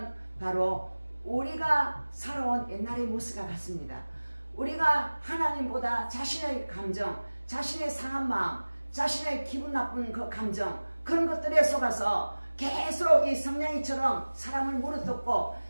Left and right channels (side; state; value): both; inverted; correlation -1.00